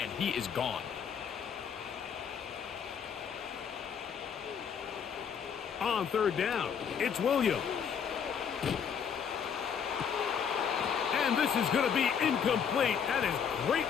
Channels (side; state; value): right; quieter; 7.4 dB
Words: he is gone. On third down, it's Williams. And this is going to be incomplete. That is great